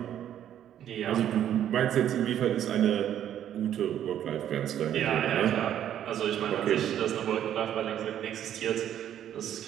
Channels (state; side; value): quieter; left; 10.6 dB